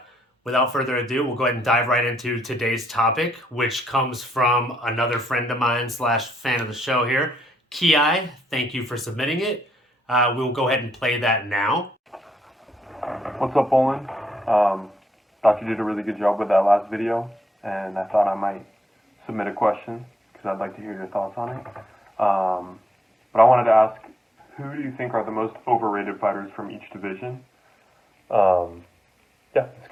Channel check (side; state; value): both; normal; correlation 0.75